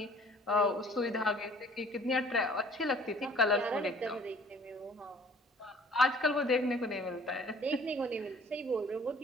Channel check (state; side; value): normal; both; correlation 0.53